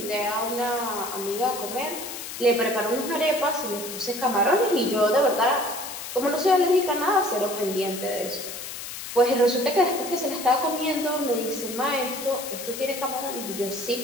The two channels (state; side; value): noise; left; hiss, 9 dB below the sound